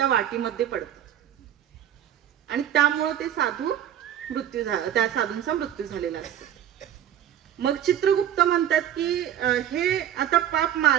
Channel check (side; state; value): left; quieter; 10.5 dB